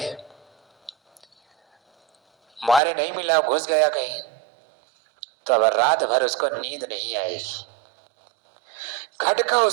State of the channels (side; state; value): left; drops out; at 2.8 s